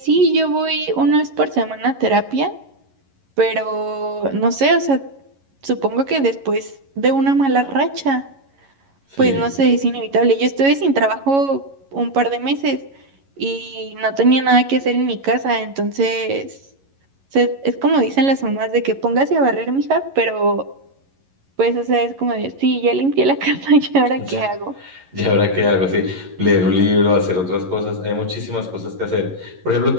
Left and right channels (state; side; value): late; left; 11 ms